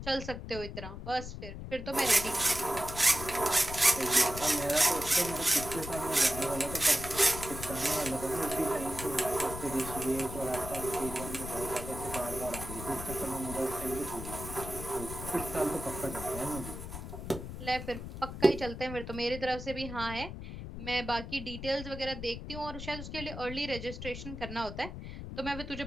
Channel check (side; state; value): left; noise; rumble, 9 dB below the sound